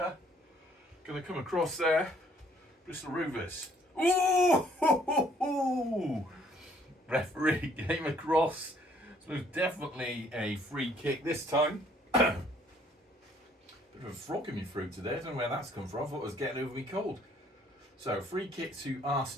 going to come across there. Bristol Rovers. Ooh! Referee came across. So it was definitely a free kick this time. Bit of a frog in my throat today. I don't know where that's come from. I thought it was getting over me cold. So, free kick to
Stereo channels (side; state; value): both; normal; correlation 0.63